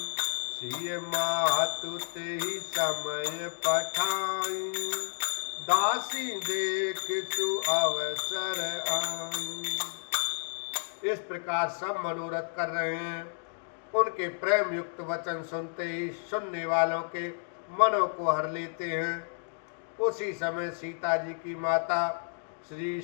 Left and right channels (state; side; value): silent; right; digital silence